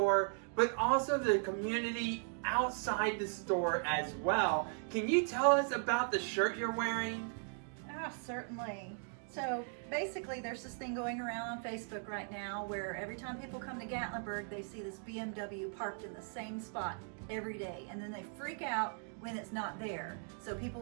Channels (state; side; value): silent; left; 52 dB below the other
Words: but also the community outside the store as well. Can you tell us about the shirt you're wearing? Certainly. So basically there's this thing going around on Facebook right now where every time people come to Gatlinburg, they see this BMW parked in the same spot every day, and then they freak out when it's not there. So people